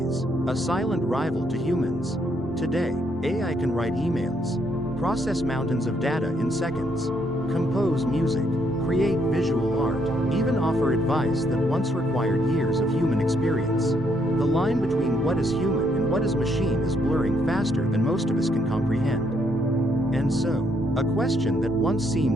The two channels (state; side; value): normal; both; correlation 0.72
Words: a silent rival to humans. Today, AI can write emails, process mountains of data in seconds, compose music, create visual art, even offer advice that once required years of human experience. The line between what is human and what is machine is blurring faster than most of us can comprehend. And so, a question that once